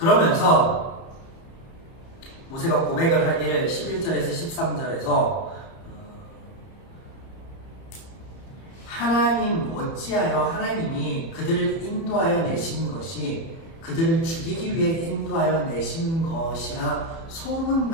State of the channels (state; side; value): late; right; 30 ms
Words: 모세가 고백을 하기를 11절에서 13절에서 하나님 어찌하여 하나님이 그들을 인도하여 내신 것이 그들을 죽이기 위해 인도하여 내신 것이나